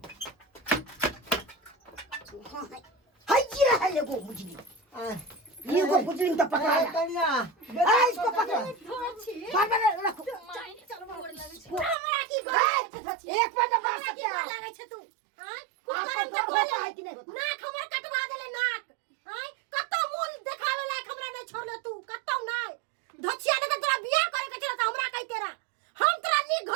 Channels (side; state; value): left; drops out; at 12.0 s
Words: कहाँ है? हाय ये है ये वो मुजलू। ये को मुजलिम तो पकड़ा है। कन्या इसको पकड़ो। बाबा रखो। हमरा की गोल एक पर मार सकते हैं। लागे छ तू हां कुकरम के गोल नाक हमर कटवा देले नाक हां कत्तो मूल देखावे लायक हमरा नहीं छोड़ले तू कत्तो नहीं धछिया ने तोरा बियाह करे के छला त हमरा कहि तेरा हम तोरा नी